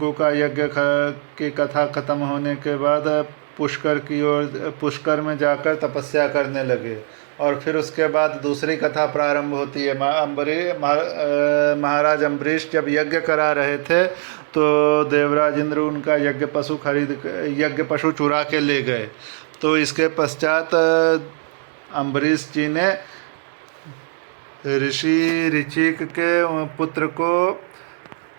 का यज्ञ की कथा खत्म होने के बाद पुष्कर में जाकर तपस्या करने लगे। और फिर उसके बाद दूसरी कथा प्रारंभ होती है। महाराज अम्बरीश जब यज्ञ करा रहे थे तो देवराज इंद्र उनका यज्ञ पशु चुरा के ले गए। तो इसके पश्चात अम्बरीश जी ने ऋषि ऋचिक के पुत्र को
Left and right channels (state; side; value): silent; left; digital silence